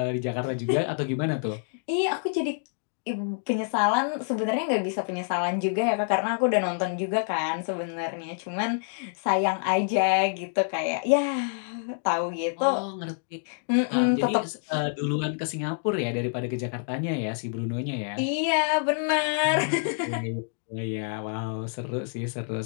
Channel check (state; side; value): silent; right; digital silence